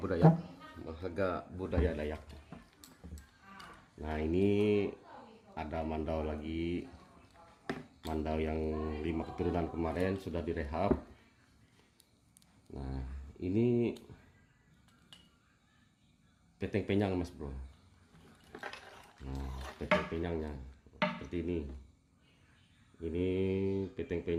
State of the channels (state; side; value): identical; both; correlation 1.00